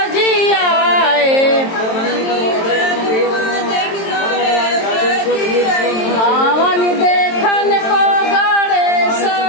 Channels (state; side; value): late; right; 22 ms